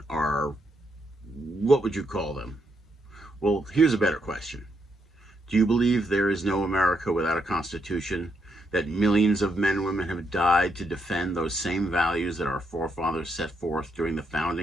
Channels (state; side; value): normal; both; correlation 0.79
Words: are, what would you call them? Well, here's a better question. Do you believe there is no America without a constitution, that millions of men and women have died to defend those same values that our forefathers set forth during the